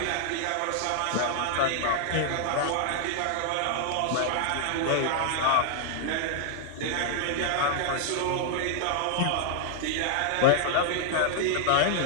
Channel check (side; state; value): both; different; correlation -0.01